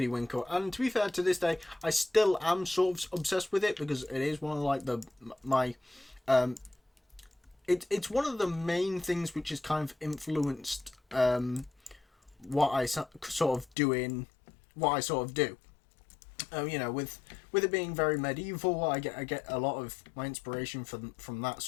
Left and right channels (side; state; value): right; drops out; at 13.7 s